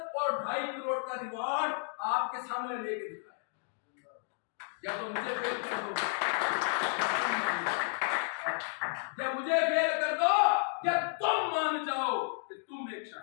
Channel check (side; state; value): right; silent; 56 dB below the other